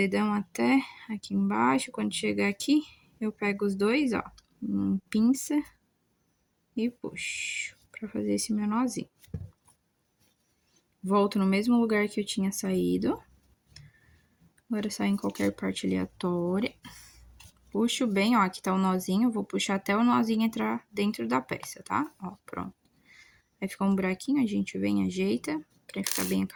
até aqui embaixo. Quando chegar aqui, eu pego os dois, ó, pinça e puxo pra fazer esse meu nozinho. Volto no mesmo lugar que eu tinha saído. Agora sai em qualquer parte aleatória. Puxo bem, ó, aqui tá o nozinho. Vou puxar até o nozinho entrar dentro da peça, tá? Ó, pronto. Aí fica um buraquinho, a gente vem e ajeita pra ficar bem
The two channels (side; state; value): both; identical; correlation 1.00